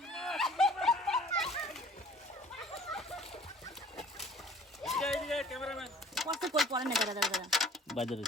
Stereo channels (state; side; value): normal; both; correlation 0.51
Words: এই ক্যামেরাম্যান কষ্ট কই পড়ে না দাদা দাদা বাজারে